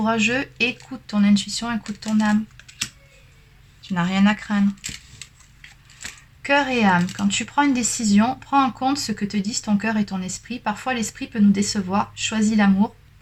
écoute ton intuition, écoute ton âme. Tu n'as rien à craindre. Cœur et âme. Quand tu prends une décision, prends en compte ce que te disent ton cœur et ton esprit. Parfois, l'esprit peut nous décevoir. Choisis l'amour,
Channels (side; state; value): both; identical; correlation 1.00